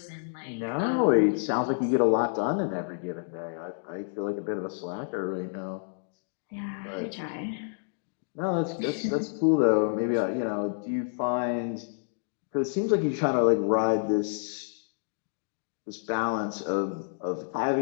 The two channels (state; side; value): silent; right; digital silence